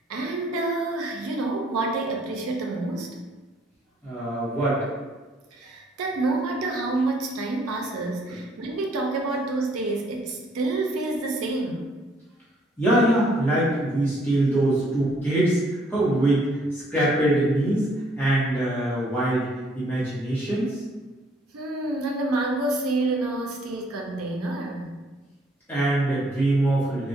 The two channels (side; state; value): both; normal; correlation 0.65